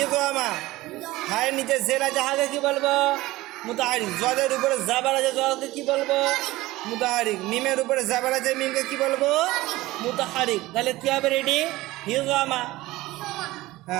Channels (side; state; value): left; quieter; 18.4 dB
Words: হায়ের নিচে জের আছে হাকে কি বলবো? মুতাহারিক। জদের উপরে জাবার আছে জকে কি বলবো? মুতাহারিক। মিমের উপরে জাবার আছে মিমকে কি বলবো? মুতাহারিক। তাহলে কি হবে? রেডি? হিজমা।